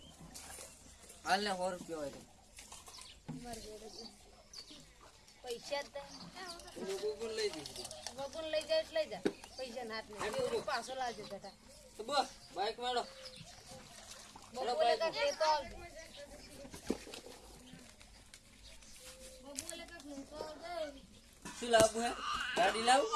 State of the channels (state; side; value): identical; both; correlation 1.00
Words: હાલ ને 100 રૂપિયા હોય પૈસા બબુન લઈ દી બબુન લઈ જાય એટલે લઈ જા પૈસા નાટ ને પાછો લાવજો બેટા તો બસ બાઈક મારો બબુલે કાક લેતો આવજો બબુલે કાક લેતો આવજો શું લાવવું હે ગાડી લાવ